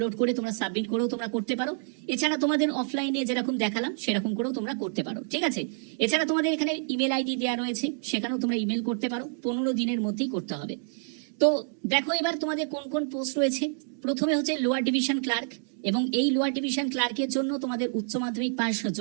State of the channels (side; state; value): left; silent; digital silence